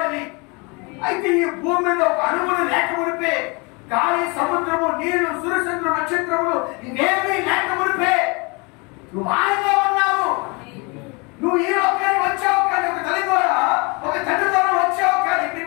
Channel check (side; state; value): right; quieter; 29.4 dB